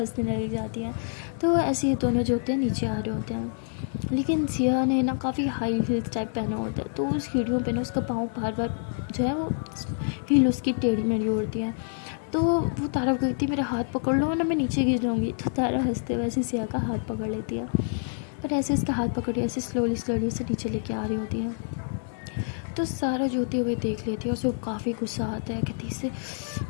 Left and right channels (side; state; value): right; silent; digital silence